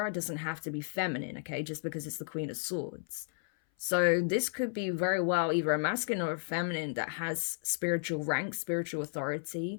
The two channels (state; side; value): silent; right; 56 dB below the other